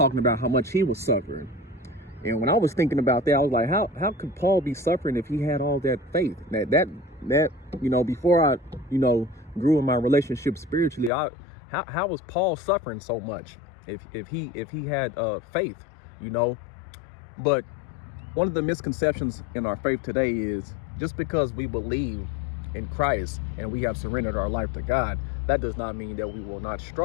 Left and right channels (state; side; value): drops out; right; at 11.1 s